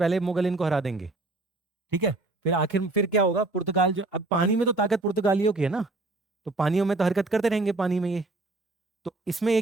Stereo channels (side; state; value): left; quieter; 3.1 dB